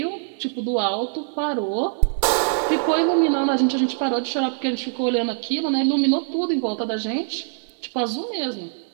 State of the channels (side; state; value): left; silent; digital silence